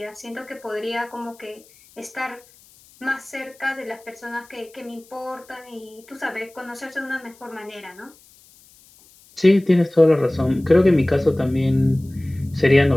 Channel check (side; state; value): left; noise; hiss, 27 dB below the sound